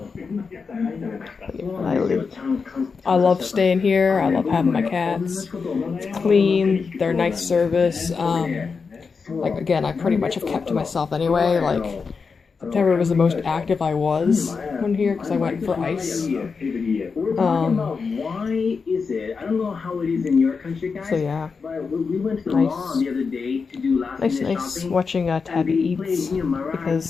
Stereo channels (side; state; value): right; quieter; 5.1 dB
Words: I love staying here. I love having my cats. It's clean. They're nice service. Like, again, I pretty much have kept to myself anyway. Like, September was the most active I was when here because I went for ice. So yeah, nice watching Tabby eats